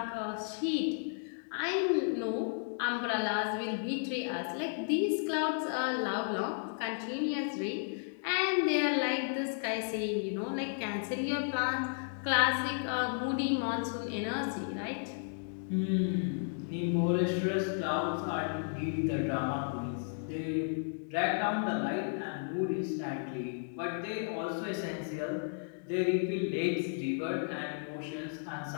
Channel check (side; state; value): right; silent; digital silence